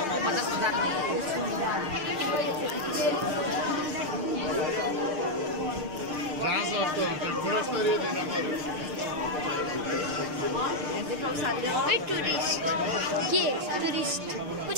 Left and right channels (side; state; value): left; late; 6.6 ms